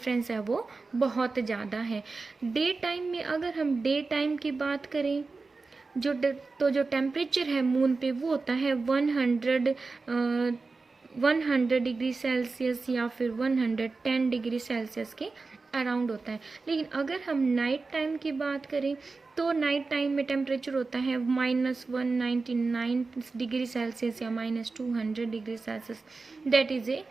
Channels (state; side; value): quieter; left; 4.0 dB